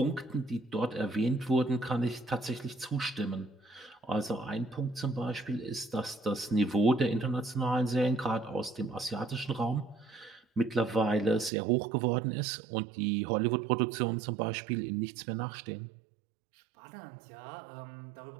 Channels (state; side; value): drops out; left; at 11.5 s